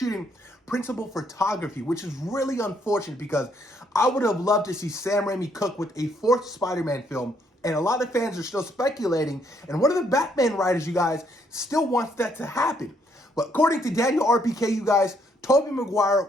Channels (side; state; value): both; normal; correlation 0.71